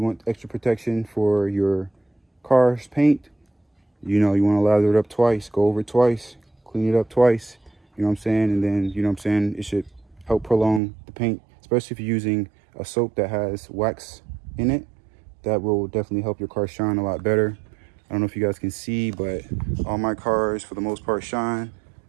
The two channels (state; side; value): drops out; left; at 10.8 s